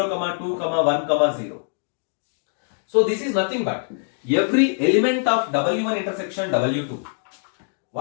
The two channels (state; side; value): silent; right; digital silence